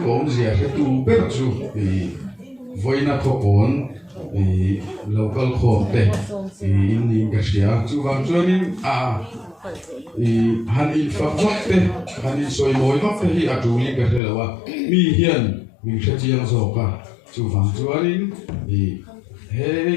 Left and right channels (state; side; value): drops out; right; at 14.2 s